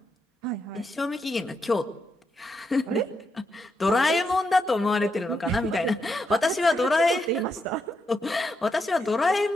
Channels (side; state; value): both; normal; correlation 0.82